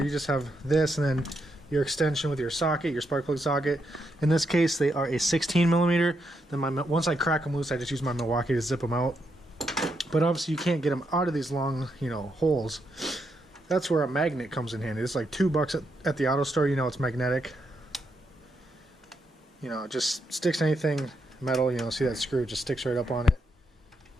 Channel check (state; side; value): normal; both; correlation 0.80